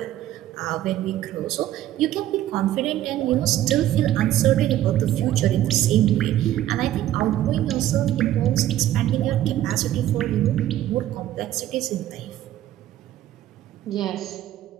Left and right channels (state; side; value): quieter; left; 13.1 dB